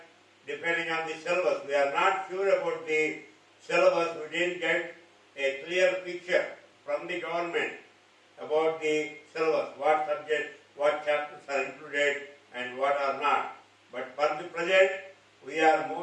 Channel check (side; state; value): both; identical; correlation 1.00